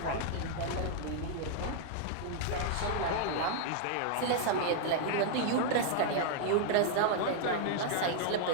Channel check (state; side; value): different; both; correlation 0.00